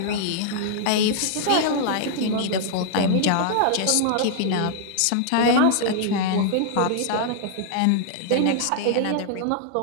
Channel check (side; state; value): both; different; correlation -0.01